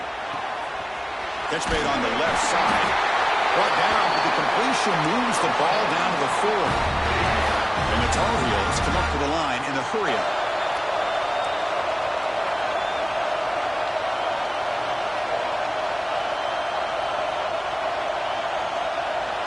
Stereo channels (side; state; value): both; identical; correlation 1.00